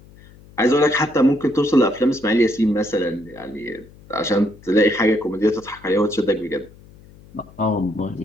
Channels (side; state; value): left; noise; hum, 24 dB below the sound